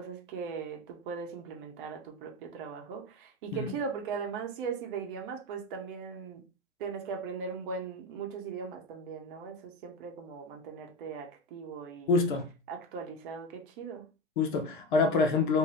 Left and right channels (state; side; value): normal; both; correlation 0.20